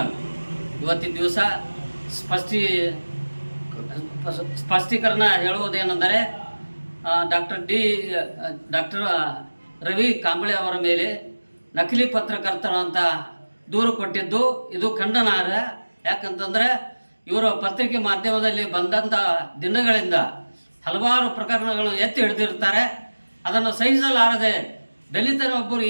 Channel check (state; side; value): inverted; both; correlation -1.00